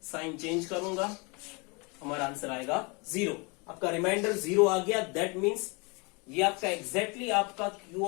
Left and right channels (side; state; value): right; quieter; 29.9 dB